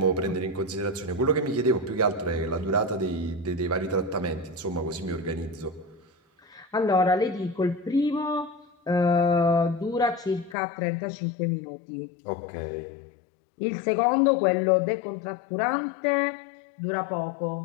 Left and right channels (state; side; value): drops out; right; at 10.6 s